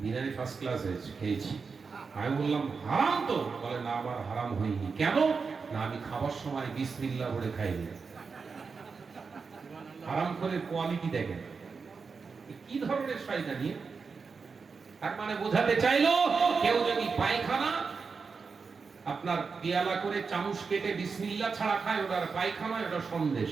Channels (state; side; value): quieter; left; 5.1 dB